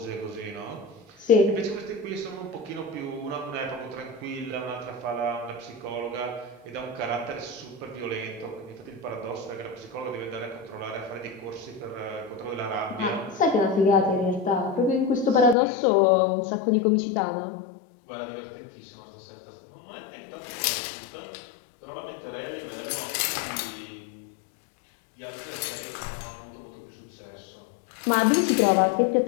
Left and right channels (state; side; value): drops out; right; at 15.6 s